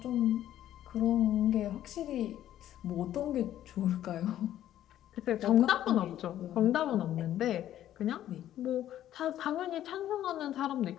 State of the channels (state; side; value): quieter; right; 12.1 dB